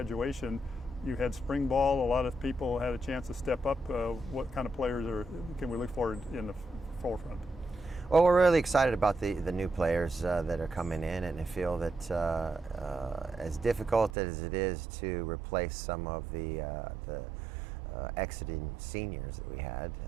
You had spring ball. A lot of people had a chance to step up. What kind of players can we look forward in the forefront? Well, we're really excited about the new players that are coming in, and I feel that as difficult as it is to replace some of the exiting seniors that we had,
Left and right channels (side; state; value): left; drops out; at 14.2 s